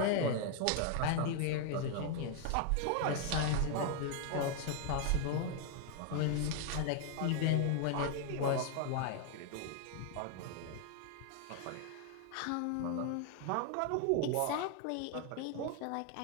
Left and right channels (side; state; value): both; different; correlation 0.00